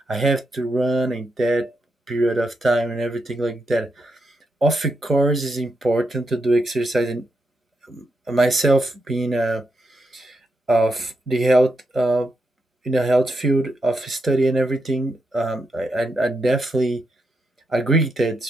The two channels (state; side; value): normal; both; correlation 0.83